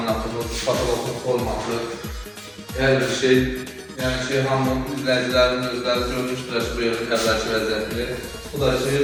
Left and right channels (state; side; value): identical; both; correlation 1.00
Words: patologumuz olmalı. Her bir şey, yani hamının izleyicilerinin özləri görmüşdür bu yönü əvvəlki vəziyyətini. Bu da